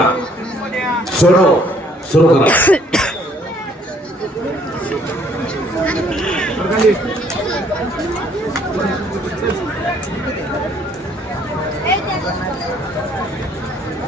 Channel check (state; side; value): normal; both; correlation 0.62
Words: सोनो सुरू करा.